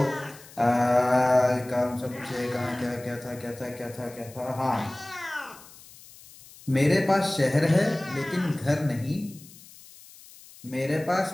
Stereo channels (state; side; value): noise; left; hiss, 21 dB below the sound